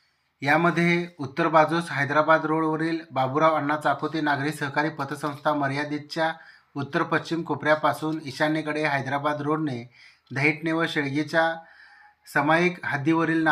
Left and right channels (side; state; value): both; identical; correlation 1.00